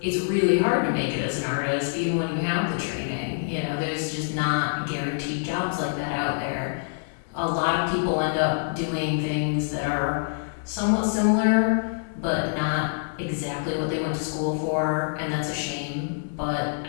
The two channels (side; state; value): right; silent; digital silence